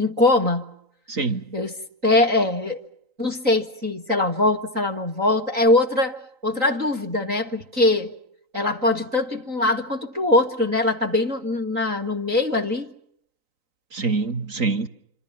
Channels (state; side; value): late; left; 3.9 ms